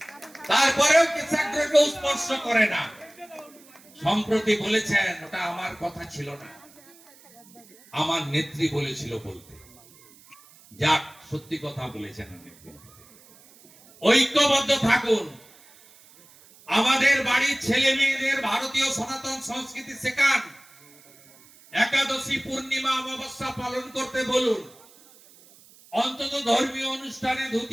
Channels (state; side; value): noise; right; hiss, 25 dB below the sound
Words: তারপরেও কেশাগ্রকে স্পর্শ করে না। সম্প্রতি বলেছেন ওটা আমার কথা ছিল না, আমার নেত্রী বলেছিল বলতে। যাক, সত্যি কথা বলেছেন নেত্রী। ঐক্যবদ্ধ থাকুন। আমাদের বাড়ির ছেলে মেয়েদের ভারতীয় সনাতন সংস্কৃতি শেখান। একাদশী, পূর্ণিমা, অমাবস্যা পালন করতে বলুন। অন্তত ধর্মীয় অনুষ্ঠানে